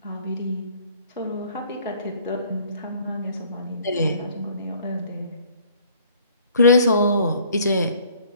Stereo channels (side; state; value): both; inverted; correlation -0.57